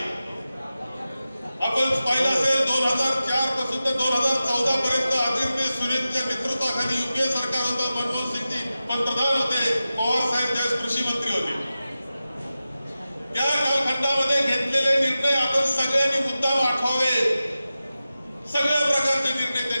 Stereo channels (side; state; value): both; inverted; correlation -0.94